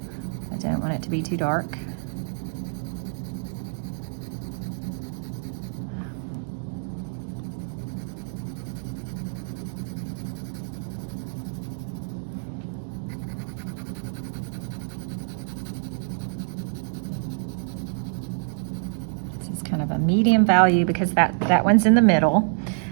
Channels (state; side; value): silent; left; digital silence